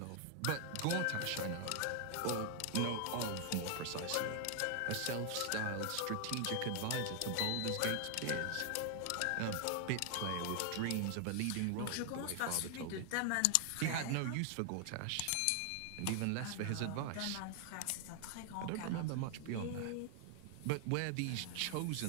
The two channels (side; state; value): both; different; correlation 0.00